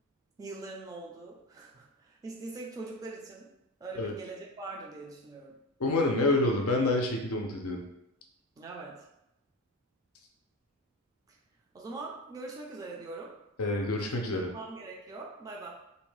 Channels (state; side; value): normal; both; correlation 0.25